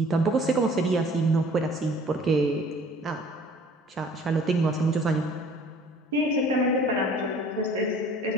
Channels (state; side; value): normal; both; correlation 0.51